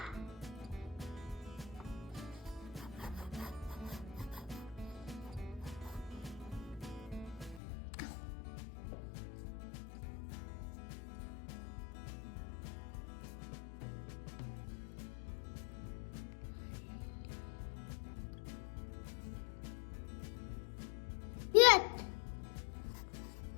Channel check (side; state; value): right; drops out; at 7.6 s